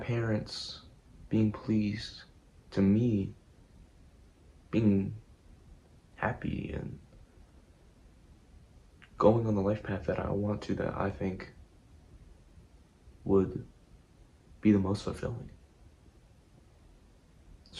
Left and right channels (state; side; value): identical; both; correlation 1.00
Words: being pleased to me being happy and going on the life path that I want to, that I think would be the most fulfilling.